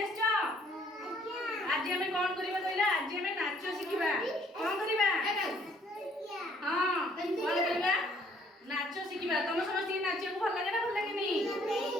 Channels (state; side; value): normal; both; correlation 0.62